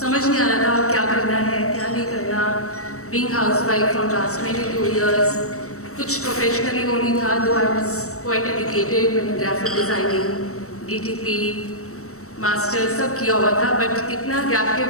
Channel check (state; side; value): late; right; 0.64 ms